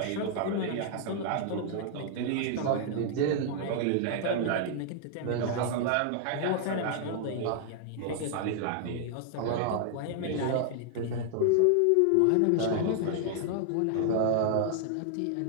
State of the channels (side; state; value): both; different; correlation 0.00